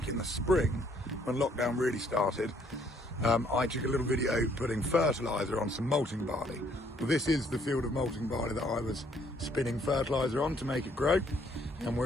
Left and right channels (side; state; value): both; normal; correlation 0.65